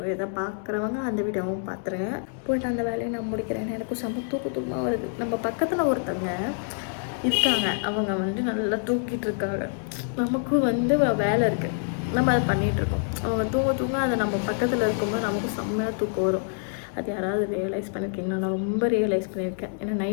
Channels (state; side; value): silent; right; digital silence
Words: இதை பார்க்குறவங்க அந்த வீடியோவும் பார்த்துருங்க. போய்ட்டு அந்த வேலையை நான் முடிக்கிறேன். எனக்கும் செம்ம தூக்கமாக வருது. நம்ம பக்கத்தில் ஒருத்தவங்க இருக்காங்க. அவங்க வந்து நல்லா தூக்கிட்டு இருக்காங்க. நமக்கும் வந்து வேலை இருக்குது, நம்ம அதை பண்ணிகிட்ருக்கோம். அவங்க தூங்க அதை நம்ம பக்கத்தில் இருக்கும்போது நமக்கும் செம்மையாக தூக்கம் வரும். அது யாராவது ரியலைஸ் பண்ணியிருக்கீங்களா? நான் ரொம்ப ரியலைஸ் பண்ணியிருக்கேன். ஏன்னா